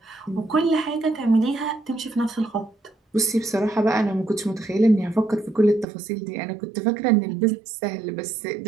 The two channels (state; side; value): drops out; left; at 5.9 s